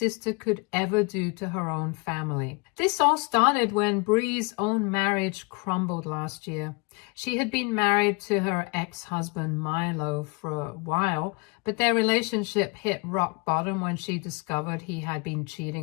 could ever do to her own family. This all started when Bree's own marriage crumbled last year. She had been married to her ex-husband Milo for a while, but their relationship hit rock bottom when she discovered he had been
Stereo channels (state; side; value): quieter; right; 30.3 dB